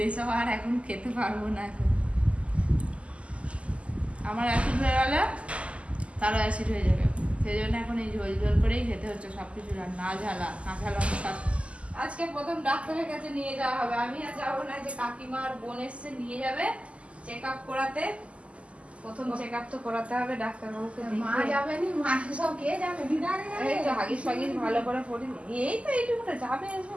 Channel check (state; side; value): late; left; 0.059 ms